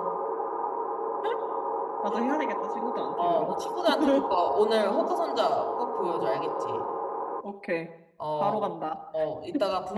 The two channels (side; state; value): both; identical; correlation 1.00